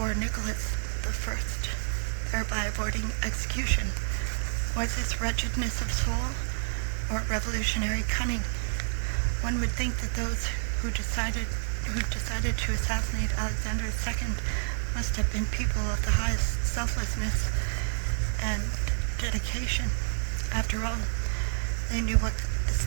Nicholas I, thereby avoiding execution. Was this wretchedness of soul, or revolutionary cunning? One would think that those who decided to assassinate Alexander II must have been people of the highest selflessness and dedication. After all, they knew what the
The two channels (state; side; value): silent; left; 59 dB below the other